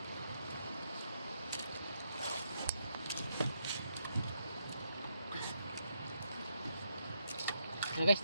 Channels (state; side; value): inverted; both; correlation -0.79